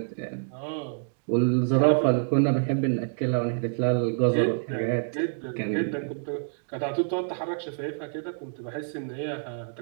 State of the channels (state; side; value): silent; left; digital silence